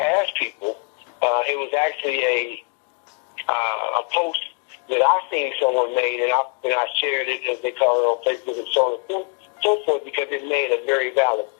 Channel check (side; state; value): right; quieter; 36.3 dB